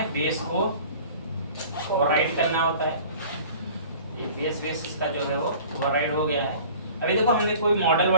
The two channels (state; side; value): inverted; both; correlation -0.46